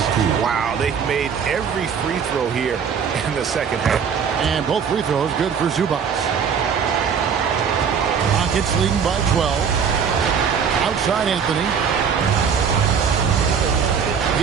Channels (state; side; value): quieter; left; 6.8 dB